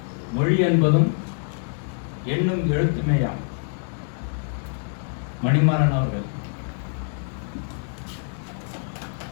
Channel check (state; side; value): silent; right; 62 dB below the other